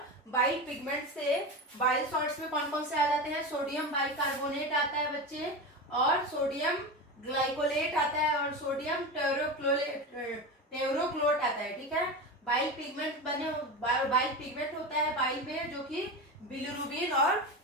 बाइल पिगमेंट से बाइल सॉल्ट्स में कौन कौन से आ जाते हैं? सोडियम बाइकार्बोनेट आता है बच्चे, और सोडियम ग्लाइकोलेट आता है, और सोडियम टेरोक्लोट आता है, ठीक है। बाइल पिगमेंट होता है बाइल में, जो कि बिलिरुबिन और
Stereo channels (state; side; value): normal; both; correlation 0.23